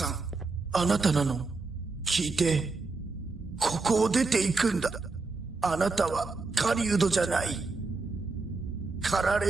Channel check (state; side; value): quieter; left; 3.9 dB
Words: ん、あなたなの？聞いて。ここを出て行くんだ。あなたは狩人じゃない。狩ら